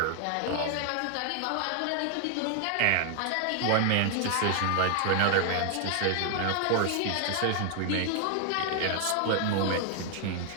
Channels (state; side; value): different; both; correlation 0.00